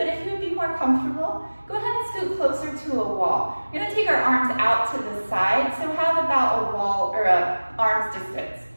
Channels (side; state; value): both; inverted; correlation -1.00